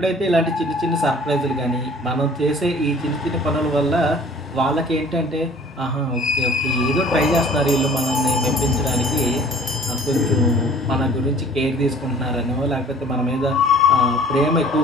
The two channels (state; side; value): normal; both; correlation 0.50